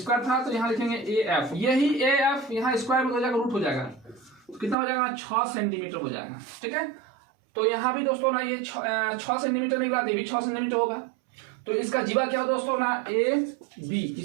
था, तो यहाँ लिखेंगे ए एफ, यही ए एफ यहाँ स्क्वायर में हो जाएगा, रूट हो जाएगा, तो कितना हो जाएगा ना 6 सेंटीमीटर हो जाएगा। ठीक है, तो यहां भी दोस्तों ना ये 6 सेंटीमीटर निकला, ये भी 6 सेंटीमीटर होगा, तो इसका जीवा क्या हो दोस्तों ना ए बी,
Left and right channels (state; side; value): drops out; left; at 4.8 s